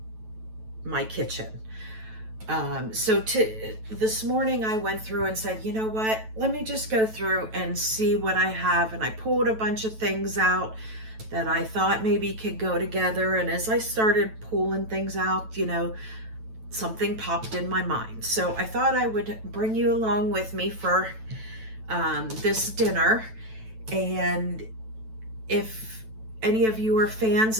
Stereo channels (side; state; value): left; late; 9.1 ms